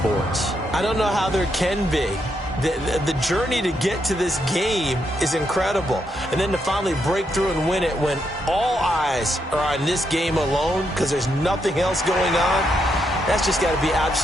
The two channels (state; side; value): normal; both; correlation 0.79